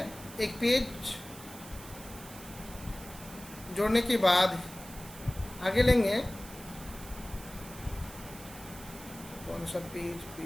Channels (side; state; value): right; noise; hiss, 15 dB below the sound